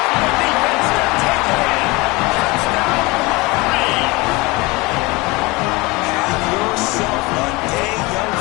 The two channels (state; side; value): quieter; right; 23.9 dB